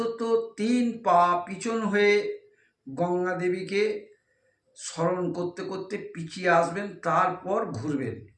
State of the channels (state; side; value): identical; both; correlation 1.00